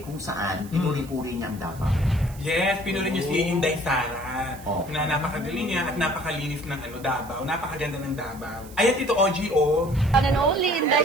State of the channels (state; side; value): noise; right; hiss, 20 dB below the sound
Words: saan pinuri-puri niya ang Davao. Yes, pinuri niyo si Inday Sara. Oh. Na napakagaling niya at napakalinis ng Davao. Napakaganda ng Davao. Ayan, Tito OG, oh. One and only